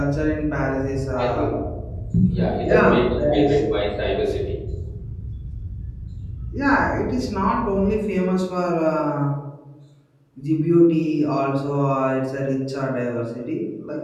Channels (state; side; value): identical; both; correlation 1.00